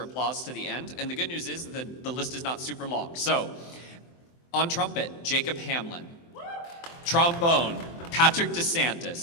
to the end, and the good news is that the list is not super long. So, on trumpet, Jacob Hamlin. Trombone, Patrick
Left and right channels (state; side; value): late; right; 24 ms